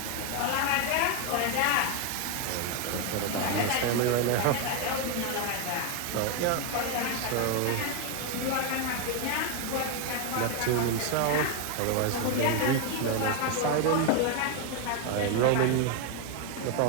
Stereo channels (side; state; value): both; different; correlation 0.01